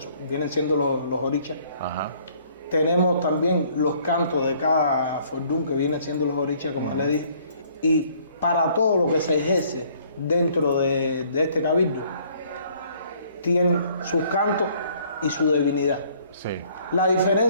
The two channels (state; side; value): inverted; both; correlation -0.61